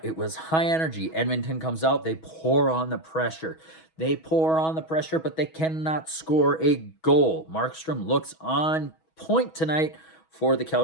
It was high energy. Edmonton comes out. They pour on the pressure. They pour on the pressure, but they cannot score a goal. Markstrom looks on point tonight for the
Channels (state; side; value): late; right; 6.2 ms